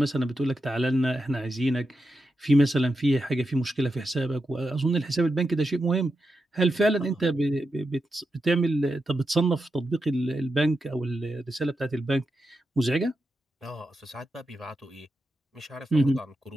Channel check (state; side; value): normal; both; correlation 0.88